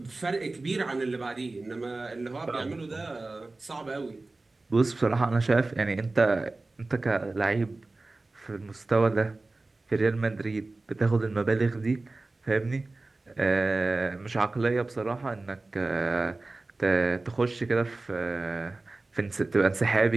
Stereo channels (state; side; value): quieter; left; 3.2 dB